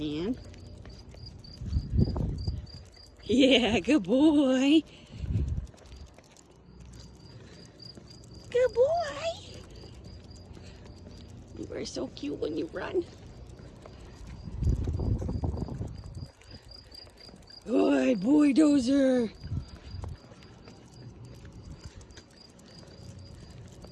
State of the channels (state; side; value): identical; both; correlation 1.00